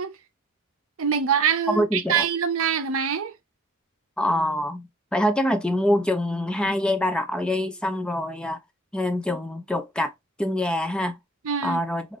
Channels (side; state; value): both; normal; correlation 0.55